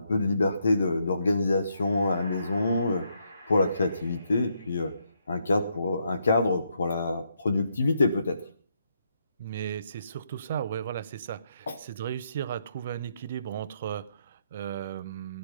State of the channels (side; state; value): both; inverted; correlation -0.77